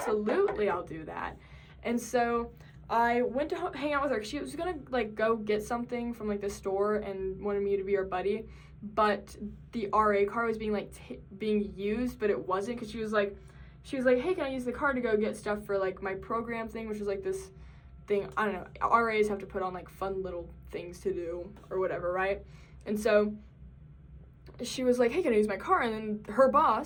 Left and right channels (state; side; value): identical; both; correlation 1.00